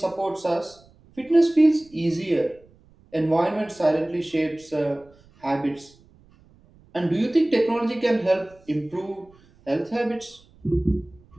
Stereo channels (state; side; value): noise; right; rumble, 29 dB below the sound